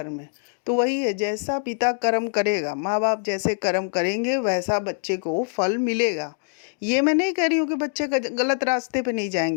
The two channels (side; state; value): right; silent; digital silence